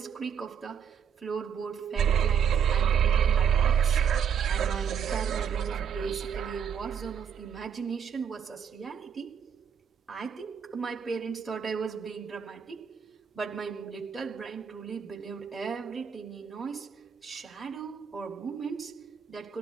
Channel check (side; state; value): left; quieter; 7.6 dB